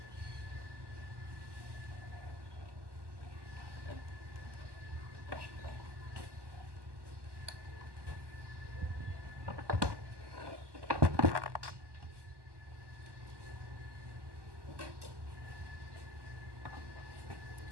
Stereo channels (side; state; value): left; late; 1.2 ms